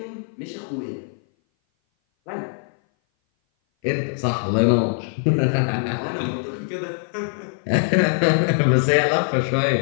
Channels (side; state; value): right; silent; 58 dB below the other